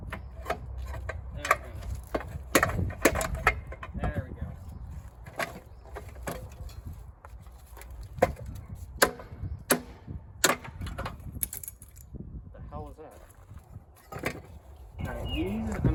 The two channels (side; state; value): both; identical; correlation 1.00